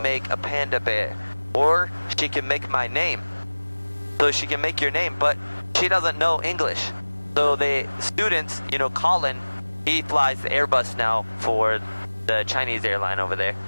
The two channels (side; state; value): both; inverted; correlation -1.00